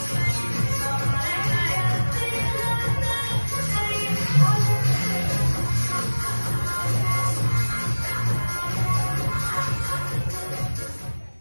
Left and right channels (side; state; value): both; inverted; correlation -1.00